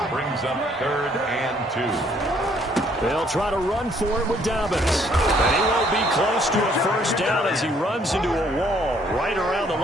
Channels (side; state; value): both; normal; correlation 0.64